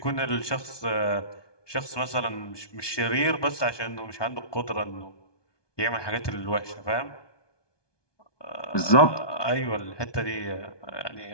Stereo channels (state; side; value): late; right; 1.2 ms